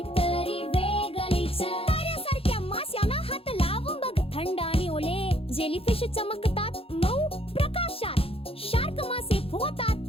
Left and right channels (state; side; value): late; right; 0.27 ms